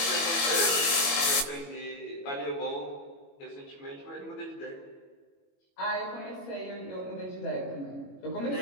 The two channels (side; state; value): right; late; 21 ms